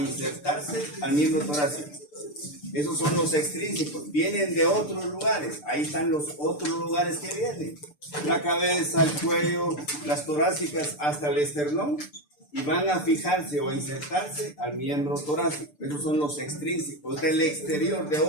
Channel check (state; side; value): late; right; 6.8 ms